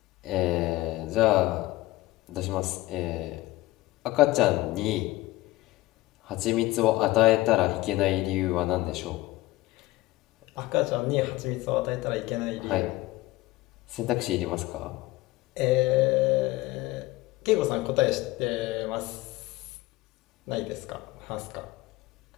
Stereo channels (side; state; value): right; quieter; 18.4 dB